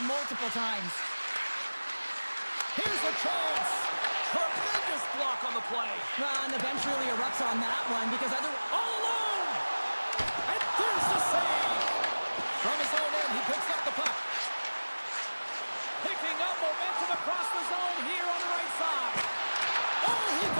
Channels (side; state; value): both; inverted; correlation -1.00